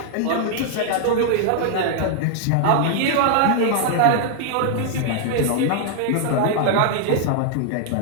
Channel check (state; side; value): different; both; correlation -0.01